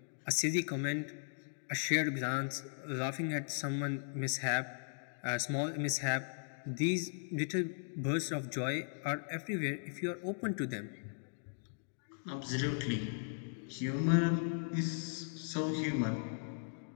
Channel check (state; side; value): silent; right; digital silence